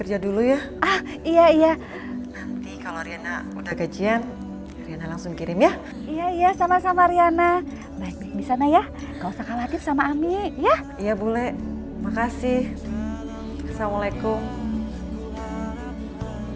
dulu ya. Ah, iya. Nanti kalau Riana udah gajian, Riana langsung kirim ya. Iya, sama-sama Riana. Baik-baik di sana ya. Gak usah khawatir sama Ami, ya. Iya bule, makasih. Assalamualaikum.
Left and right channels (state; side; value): identical; both; correlation 1.00